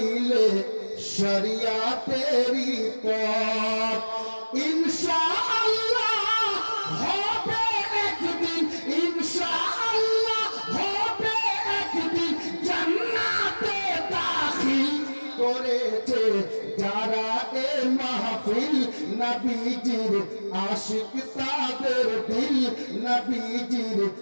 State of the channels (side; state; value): both; inverted; correlation -1.00